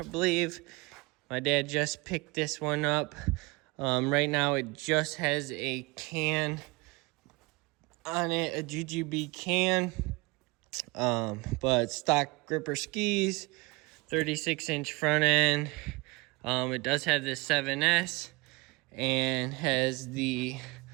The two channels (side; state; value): left; quieter; 25.4 dB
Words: believe. My dad just picked this one up. Right now it just has a can on it, a GGB can. But stock gripper skis, 36-inch front end. It does have the 7S and has the,